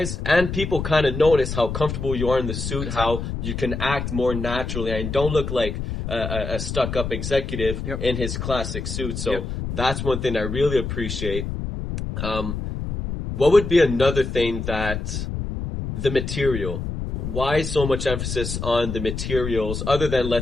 and people kind of notice how comfortable you are in the suit, how you can act more naturally, and don't look like a stuck-up executive in his classic suit. So that's one thing I really appreciate. What would be another thing that the material? Why so much emphasis on the materials other than,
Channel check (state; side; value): noise; left; rumble, 5 dB below the sound